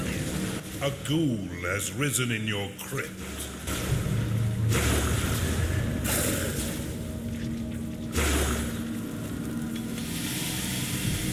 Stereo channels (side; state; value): both; identical; correlation 1.00